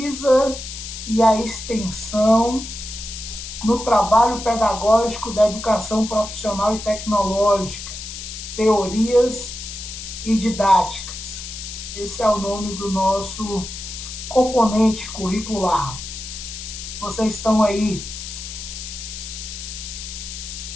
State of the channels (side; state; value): left; noise; hiss, 9 dB below the sound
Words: e a extensão no trabalho pedagógico da educação profissional e tecnológica, teorias e didáticas. Esse é o nome do nosso componente curricular. Vocês estão aí